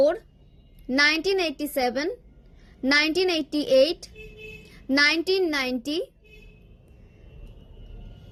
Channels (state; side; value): identical; both; correlation 1.00